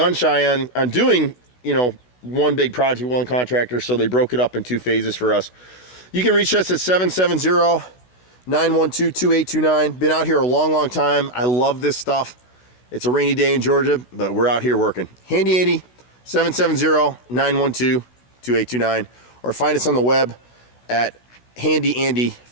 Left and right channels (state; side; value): late; right; 16 ms